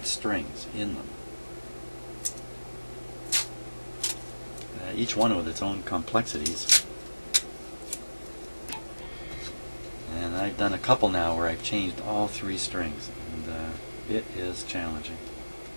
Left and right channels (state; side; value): inverted; both; correlation -1.00